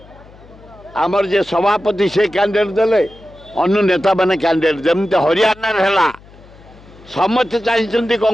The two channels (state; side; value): noise; left; hum, 23 dB below the sound